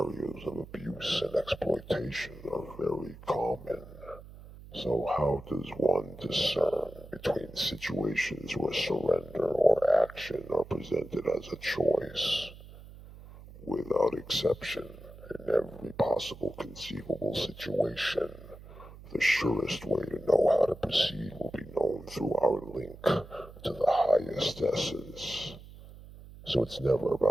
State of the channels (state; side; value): noise; right; hum, 17 dB below the sound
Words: of abuse and exploitation are very common. So how does one discern between situations where surrender or action are presented as a choice? Without exception, in every possible conceivable situation, the surest way to know how to proceed will be known through our link to the highest essence. So it's never